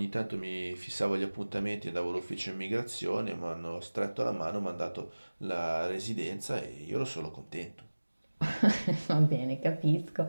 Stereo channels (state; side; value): inverted; both; correlation -1.00